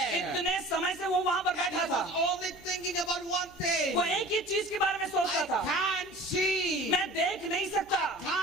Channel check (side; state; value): right; noise; hum, 27 dB below the sound